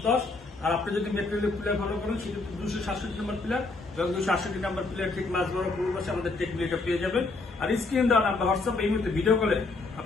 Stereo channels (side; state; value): right; quieter; 3.5 dB